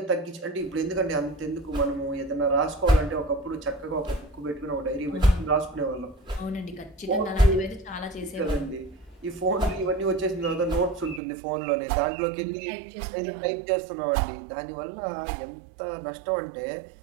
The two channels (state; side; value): drops out; left; at 11.2 s